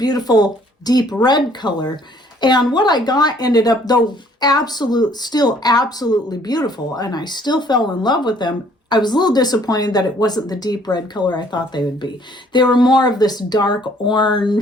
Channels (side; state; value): both; normal; correlation 0.60